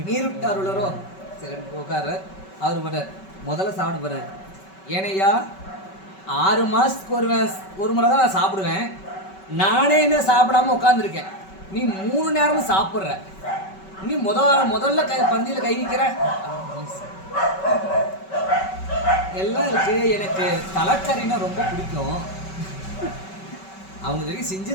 உளரோ. சரி உட்கார. அவர் படுறார், முதல்ல சாப்பிட போறாரு. ஏனையா 6 மாதத்துக்கு ஒரு முறை தான் நான் சாப்பிடுவேன். நானே இன்னும் சாப்பிடாம உட்காந்துருக்கேன். நீ 3 நேரமும் சாப்பிட்ற. நீ முதல்ல பந்தியில் கை வைக்கிற. எல்லாம் இருக்கு. எனக்கு தலைக்கறினா ரொம்ப பிடிக்கும். அவங்க தெரியும்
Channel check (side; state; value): right; late; 5.3 ms